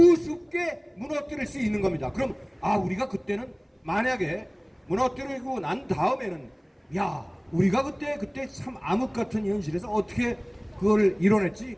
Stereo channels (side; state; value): both; identical; correlation 1.00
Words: 무너뜨릴 수 있는 겁니다. 그럼 우리가 그때는 만약에 무너뜨리고 난 다음에는 야 우리가 그때 참 암흑 같은 현실에서 어떻게 그걸 이뤄냈지?